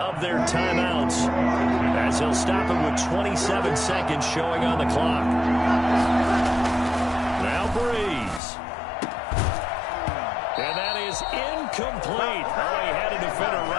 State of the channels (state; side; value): drops out; right; at 8.4 s